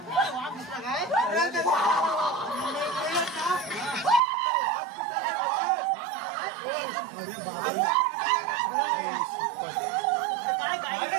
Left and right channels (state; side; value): drops out; left; at 4.2 s